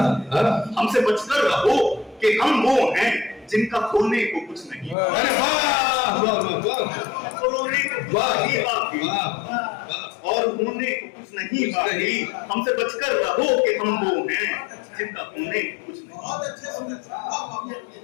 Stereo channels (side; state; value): right; drops out; at 5.0 s